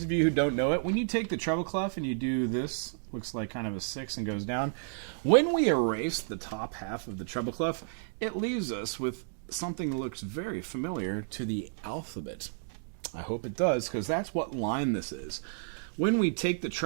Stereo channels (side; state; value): left; silent; digital silence